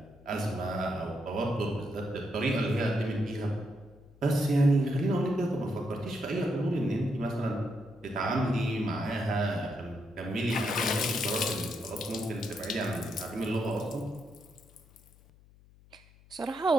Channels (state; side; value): noise; left; hum, 26 dB below the sound